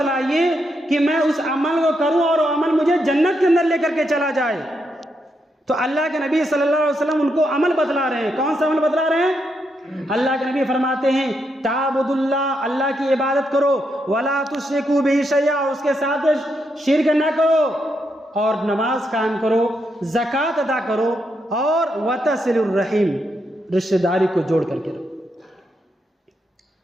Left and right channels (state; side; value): normal; both; correlation 0.81